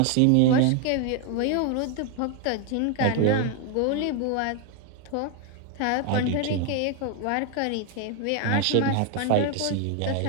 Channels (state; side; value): different; both; correlation 0.01